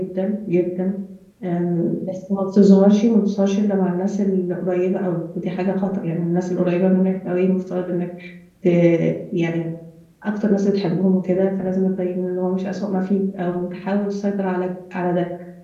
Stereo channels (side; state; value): both; identical; correlation 1.00